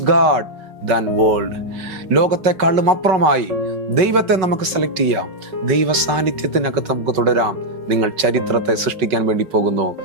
God than world. ലോകത്തെക്കാളും അപ്പുറമായി ദൈവത്തെ നമുക്ക് സെലക്ട് ചെയ്യാം. ദൈവ സാന്നിധ്യത്തിനകത്ത് നമുക്ക് തുടരാം. നിങ്ങൾ ചരിത്രത്തെ സൃഷ്ടിക്കാൻ വേണ്ടി പോകുന്നു.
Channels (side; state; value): left; late; 5.3 ms